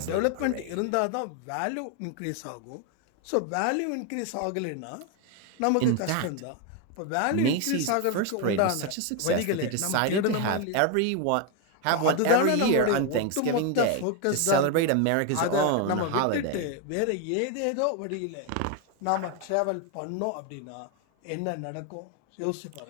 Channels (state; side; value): different; both; correlation 0.01